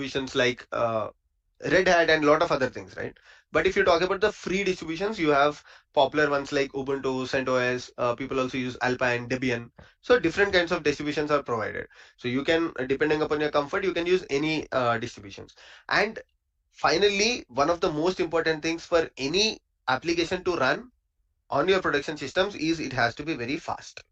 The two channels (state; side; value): identical; both; correlation 1.00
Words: like Red Hat and a lot of other things, right? But if you talk about the free distributions, you have popular ones like Ubuntu, CentOS. People also use Alpine, Debian. So different kinds of distributions are provided. So you can, depending upon your comfort, you can use any distributions. And finally, one of the most important things for any application to run on your production systems is it has to be very fast.